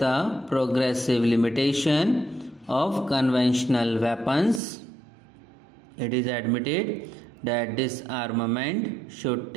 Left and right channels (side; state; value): left; drops out; at 4.6 s